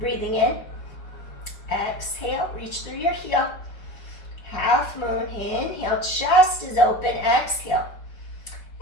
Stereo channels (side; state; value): right; late; 5.1 ms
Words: in. Exhale, reach through your heel. Half moon, inhale, chest is open, exhale.